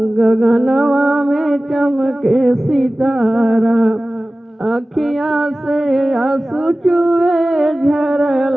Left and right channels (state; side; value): normal; both; correlation 0.97